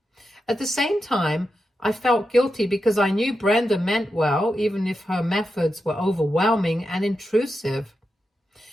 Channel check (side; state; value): both; normal; correlation 0.88